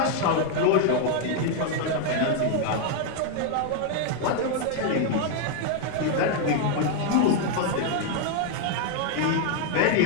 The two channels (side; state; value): both; different; correlation 0.00